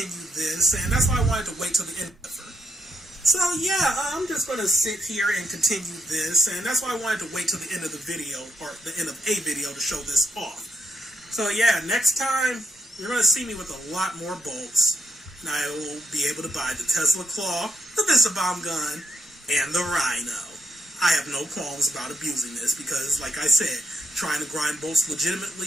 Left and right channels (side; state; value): both; normal; correlation 0.78